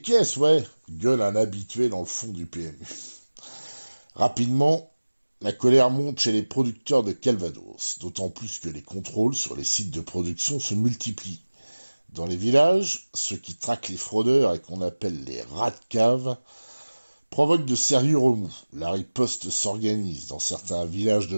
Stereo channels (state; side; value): inverted; both; correlation -1.00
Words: caisses, ouais, gueule un habitué dans le fond du PMU. Rapidement, la colère monte chez les producteurs de Calvados, d'autant plus que les contrôles sur les sites de production se multiplient. Dans les villages, ceux qui traquent les fraudeurs et qu'on appelle les rats de cave provoquent de sérieux remous. La riposte s'organise. Dans certains villages de